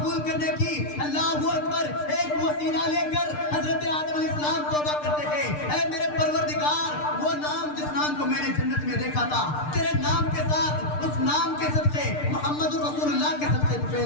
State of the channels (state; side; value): late; right; 6.7 ms